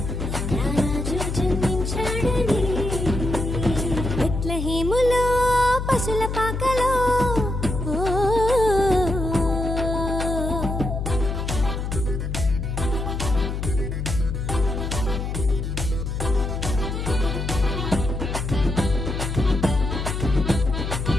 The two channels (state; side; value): noise; left; hum, 3 dB below the sound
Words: రారాజు జన్మించాడని బెత్లెహేములో పశుల పాకలో